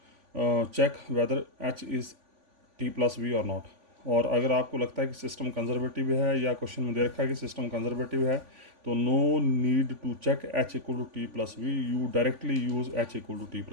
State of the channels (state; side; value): late; left; 3.5 ms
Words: check whether H is T plus B और नॉट. और अगर आपको लगता है कि सिस्टम कंजर्वेटिव है या क्वेश्चन में दे रखा है कि सिस्टम कंजर्वेटिव है तो no need to check H equal to T plus B, you directly use H equal to T